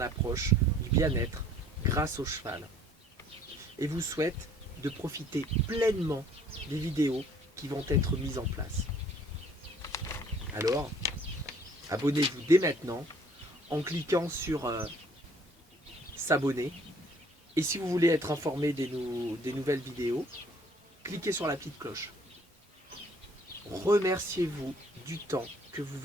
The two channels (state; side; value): normal; both; correlation 0.57